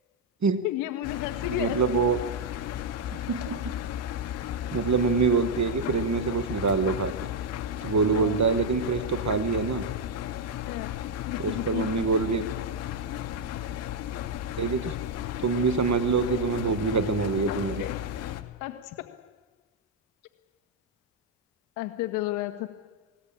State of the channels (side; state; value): both; normal; correlation 0.00